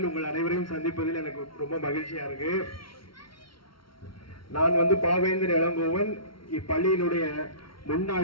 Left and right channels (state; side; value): late; right; 0.74 ms